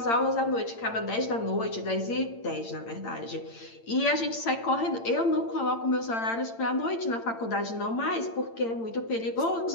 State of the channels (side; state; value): right; late; 8.8 ms